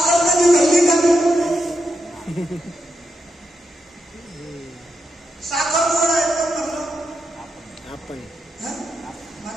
कधी घडली का? साखर गोड आहे कोण म्हणलं? आपण.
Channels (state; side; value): normal; both; correlation 0.85